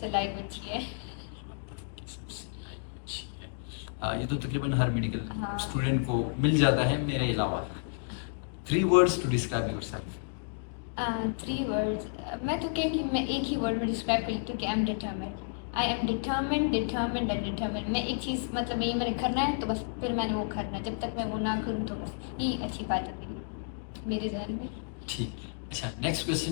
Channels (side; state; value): right; silent; digital silence